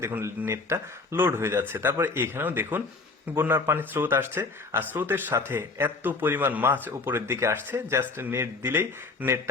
দেখুন নেটটা লোড হয়ে যাচ্ছে। তারপরে এখানেও দেখুন বন্যার পানির স্রোত আসছে আর স্রোতের সাথে এত পরিমাণ মাছ উপরের দিকে আসছে, জাস্ট নেট দিলেই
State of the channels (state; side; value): quieter; right; 3.8 dB